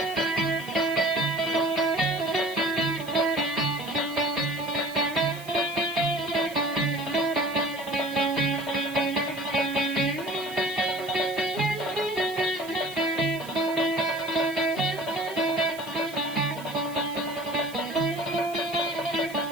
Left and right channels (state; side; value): noise; right; hiss, 18 dB below the sound